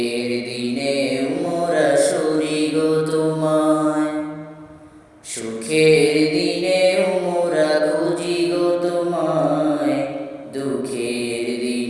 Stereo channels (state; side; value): identical; both; correlation 1.00